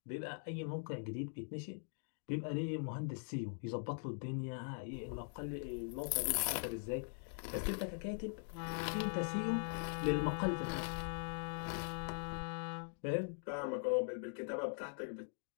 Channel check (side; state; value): right; silent; digital silence